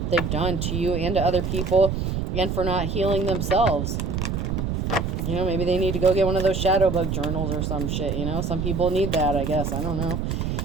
that they've done to you and to other people, and for not healing themselves. You know, maybe they need to go get one of those shadow book journals or some shit, you know? Some people need that, I guess. I don't know.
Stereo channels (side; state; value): right; noise; rumble, 1 dB below the sound